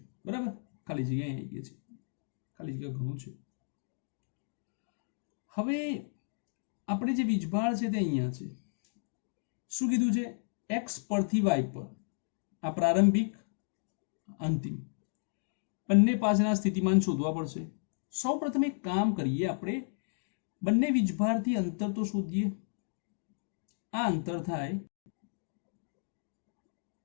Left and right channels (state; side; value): silent; right; digital silence